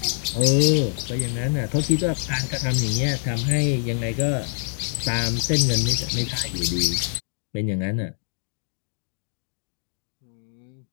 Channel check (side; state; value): right; silent; digital silence